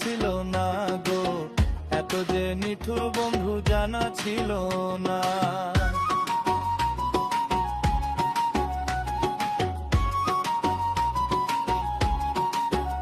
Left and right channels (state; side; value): identical; both; correlation 1.00